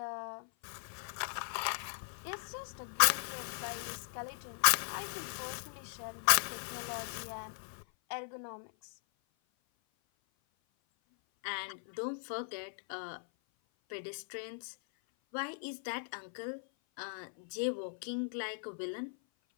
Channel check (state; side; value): silent; right; 52 dB below the other